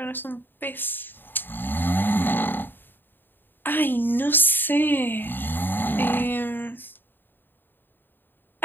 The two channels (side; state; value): right; late; 0.094 ms